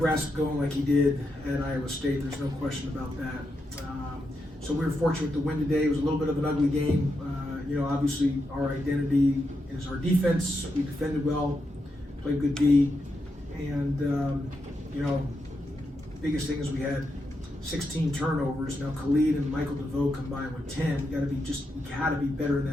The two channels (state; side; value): normal; both; correlation 0.84